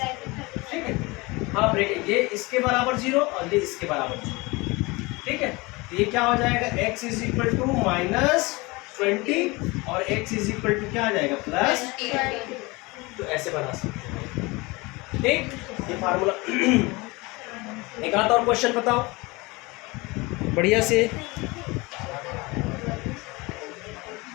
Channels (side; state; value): right; quieter; 24.3 dB